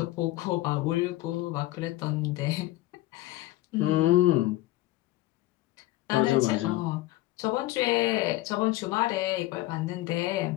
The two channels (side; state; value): right; quieter; 17.2 dB